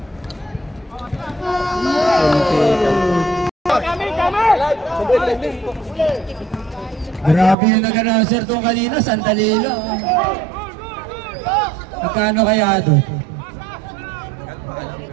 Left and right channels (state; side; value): drops out; left; at 7.6 s